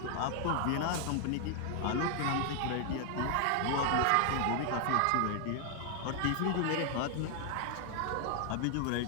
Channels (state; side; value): different; both; correlation 0.00